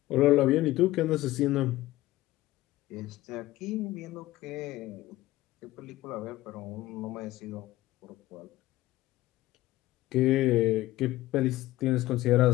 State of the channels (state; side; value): quieter; right; 16.7 dB